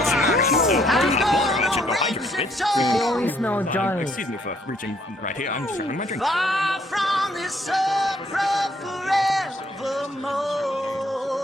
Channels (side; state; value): both; normal; correlation 0.67